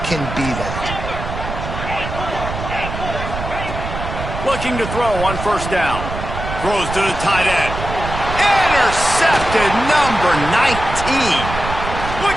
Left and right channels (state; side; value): noise; right; rumble, 7 dB below the sound